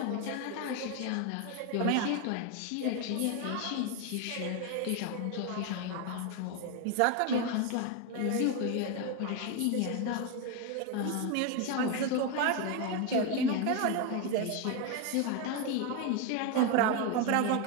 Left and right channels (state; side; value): different; both; correlation 0.02